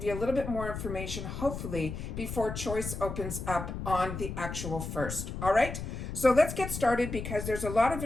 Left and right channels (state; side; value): noise; left; rumble, 6 dB below the sound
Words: you a little bit more information, hopefully, before choice opens up on the actual 1st. All right? So let's get started because there's a lot of